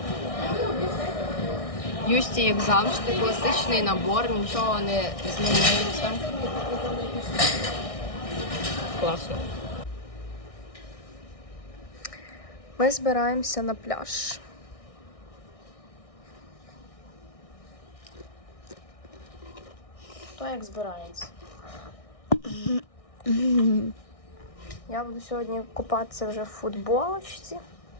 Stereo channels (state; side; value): late; right; 1.6 ms